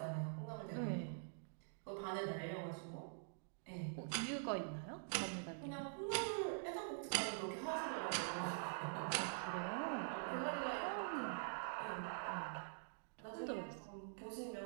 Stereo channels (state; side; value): silent; left; digital silence